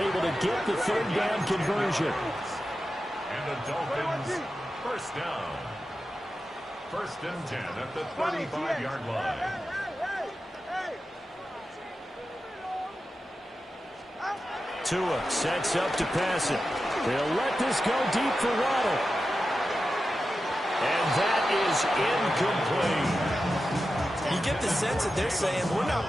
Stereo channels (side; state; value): both; normal; correlation 0.91